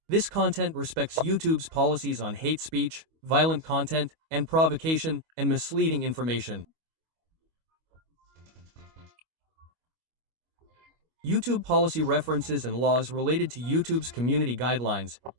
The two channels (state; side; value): late; left; 25 ms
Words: This content respects YouTube's policies on hate speech, violent content, and provocation, and misleading information. YouTube policy references and laws related to YouTube's community guidelines,